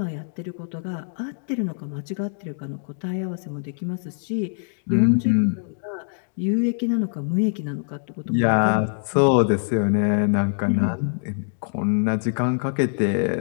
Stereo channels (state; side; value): silent; right; digital silence